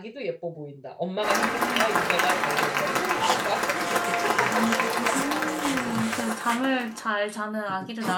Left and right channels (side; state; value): both; identical; correlation 1.00